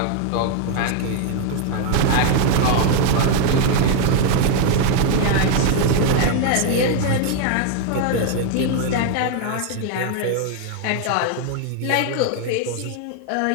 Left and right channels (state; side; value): different; both; correlation 0.00